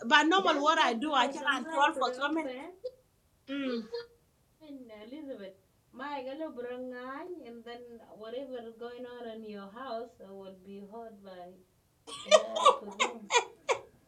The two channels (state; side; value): identical; both; correlation 1.00